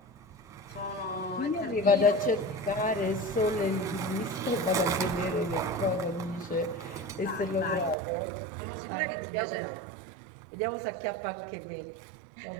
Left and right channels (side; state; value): left; drops out; at 8.0 s